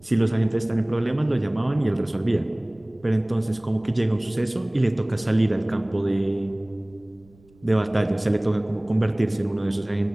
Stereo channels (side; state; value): right; noise; rumble, 29 dB below the sound